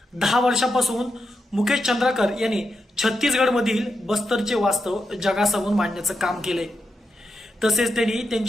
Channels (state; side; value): normal; both; correlation 0.86